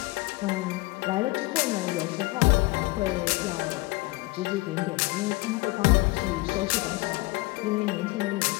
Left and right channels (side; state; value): right; quieter; 22.5 dB